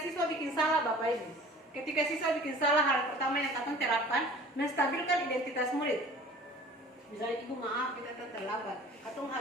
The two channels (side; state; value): both; normal; correlation 0.46